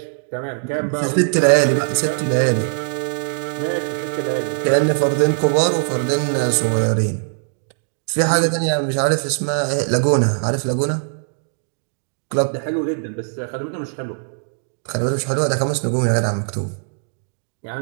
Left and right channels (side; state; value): left; silent; digital silence